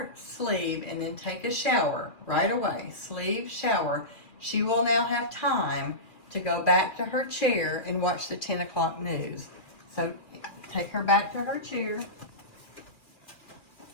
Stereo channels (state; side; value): late; right; 2.5 ms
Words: sleeve and then take a shower right away, sleeve, shower, she will now have time to go back to her chair and watch the 10 o'clock news. So take her back to her chair.